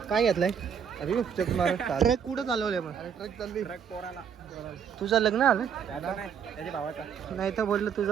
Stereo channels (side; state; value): left; quieter; 7.6 dB